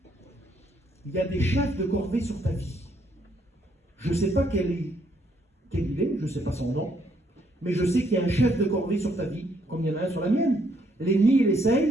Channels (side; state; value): both; normal; correlation 0.71